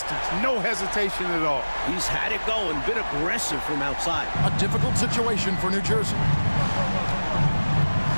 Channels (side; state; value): both; inverted; correlation -1.00